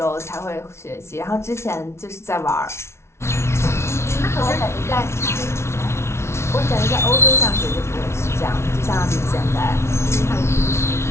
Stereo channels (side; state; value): right; late; 0.13 ms